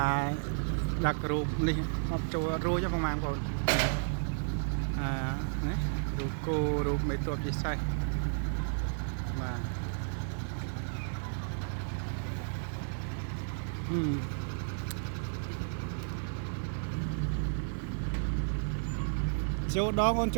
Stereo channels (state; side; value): silent; left; digital silence